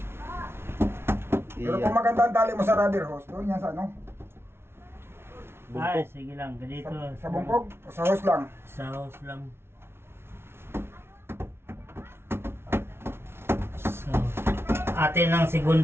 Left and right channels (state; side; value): late; left; 0.12 ms